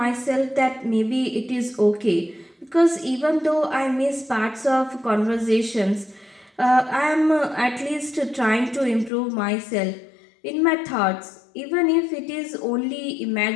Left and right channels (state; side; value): drops out; right; at 9.1 s